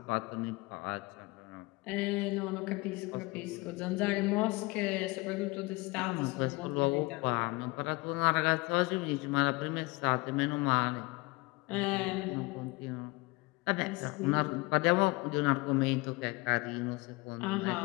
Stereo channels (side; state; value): right; quieter; 24.0 dB